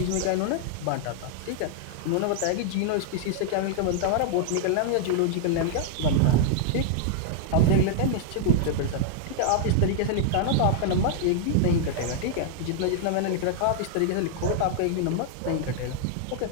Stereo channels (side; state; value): both; different; correlation -0.01